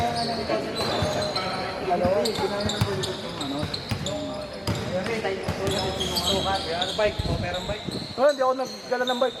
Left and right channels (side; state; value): both; identical; correlation 1.00